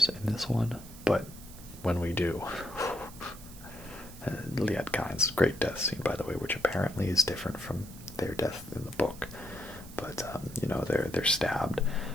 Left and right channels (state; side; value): noise; right; hiss, 18 dB below the sound